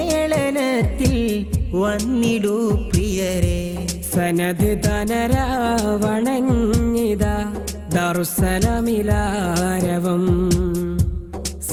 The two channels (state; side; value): identical; both; correlation 1.00